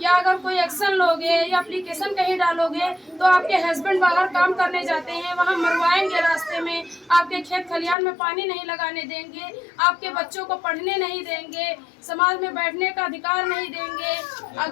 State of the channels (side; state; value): right; drops out; at 8.0 s